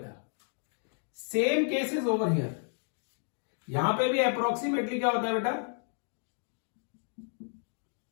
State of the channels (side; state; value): right; silent; 56 dB below the other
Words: सेम केसेस ओवर हियर, यहां पे भी अप्रोक्सीमेटली क्या होता है बेटा,